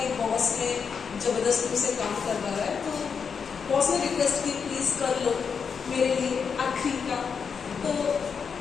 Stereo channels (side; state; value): right; quieter; 6.2 dB